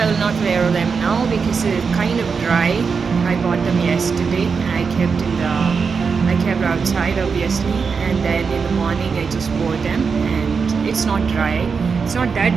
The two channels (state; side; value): quieter; left; 5.5 dB